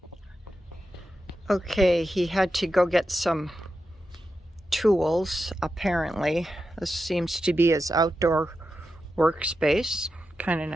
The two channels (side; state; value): both; normal; correlation 0.89